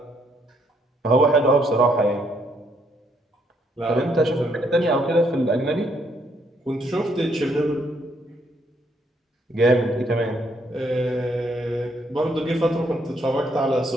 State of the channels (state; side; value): normal; both; correlation 0.71